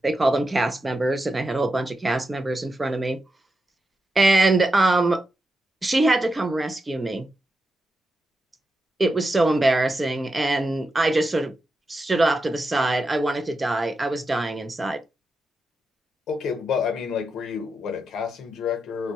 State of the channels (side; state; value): both; normal; correlation 0.88